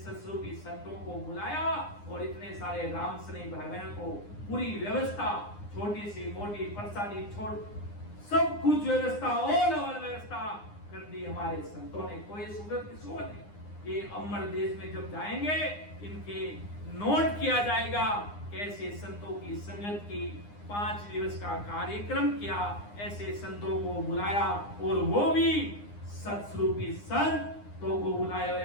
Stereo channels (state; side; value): late; right; 9.8 ms